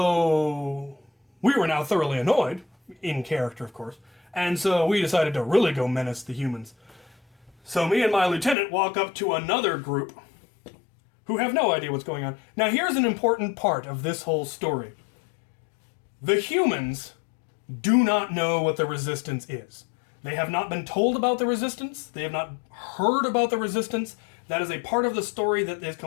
we were now thoroughly annoyed, in character, of course. And so we decided to really go menace the humans. So me and my lieutenant walk up to another group who have no idea what's going on. Now here's an important part of this whole story. The humans do not know what the resistance is. They have not been told about the resistance. They have not heard about the resistance. That is a part of the story that is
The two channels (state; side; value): drops out; right; at 8.6 s